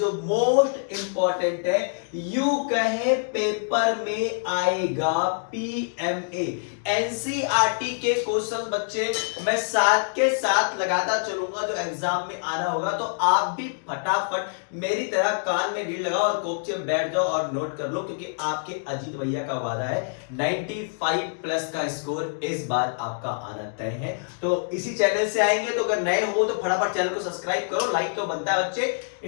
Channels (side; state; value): right; silent; digital silence